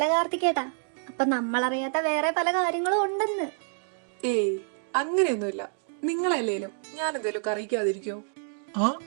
കാർത്തികേട്ടാ, അപ്പൊ നമ്മളറിയാത്ത വേറെ പല കാര്യങ്ങളും ഉണ്ടെന്ന്. ഏയ്, അങ്ങനെയൊന്നുമില്ല. നിങ്ങളല്ലേലും ഞാൻ എന്തേലും അറിയിക്കാതിരിക്കോ? ആ,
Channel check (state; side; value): silent; left; digital silence